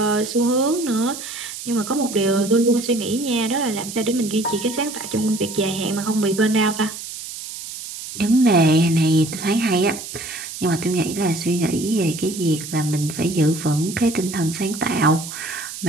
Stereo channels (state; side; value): noise; right; hiss, 10 dB below the sound